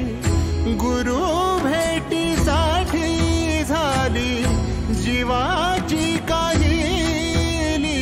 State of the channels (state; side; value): identical; both; correlation 1.00